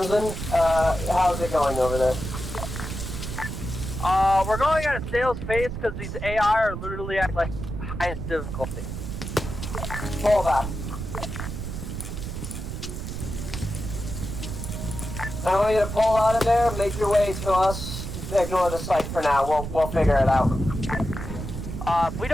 how's it going over there? We're going at a snail's pace because these AI are literally at, like, highest difficulty. Pull back. I want you to pull out of there, make your way to us. Ignore the site for now. We'll figure it out. If we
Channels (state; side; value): noise; right; rumble, 6 dB below the sound